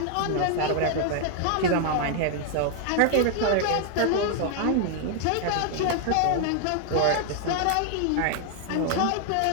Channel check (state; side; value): different; both; correlation 0.00